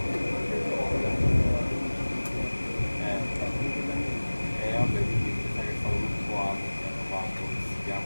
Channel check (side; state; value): both; inverted; correlation -1.00